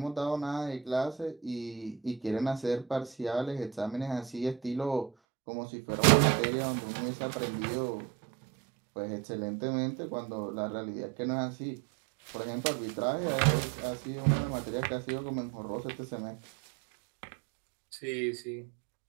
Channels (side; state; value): left; drops out; at 5.1 s